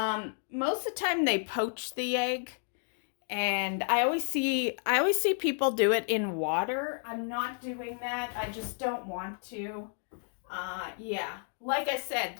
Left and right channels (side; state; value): right; silent; 57 dB below the other